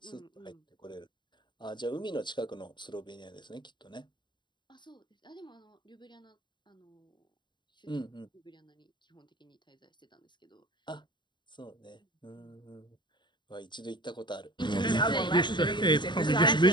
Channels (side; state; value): right; late; 0.22 ms